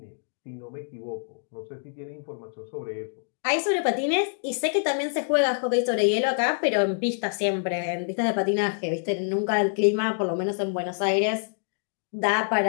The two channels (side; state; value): right; silent; digital silence